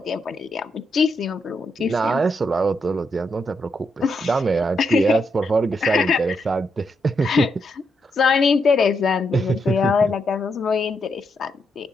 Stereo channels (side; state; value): both; normal; correlation 0.81